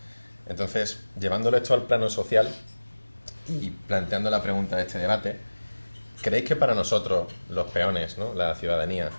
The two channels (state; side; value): inverted; both; correlation -1.00